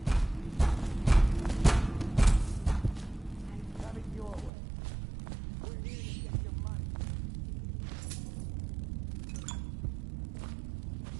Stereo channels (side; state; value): left; drops out; at 4.5 s